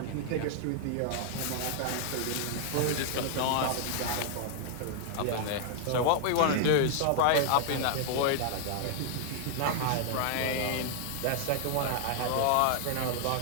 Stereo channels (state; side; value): different; both; correlation 0.00